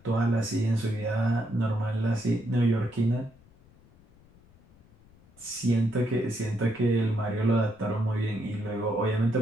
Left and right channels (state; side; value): noise; left; rumble, 27 dB below the sound